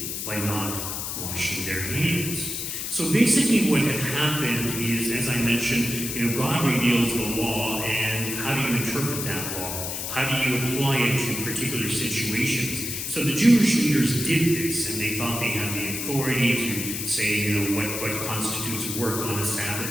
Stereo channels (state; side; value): noise; left; hiss, 4 dB below the sound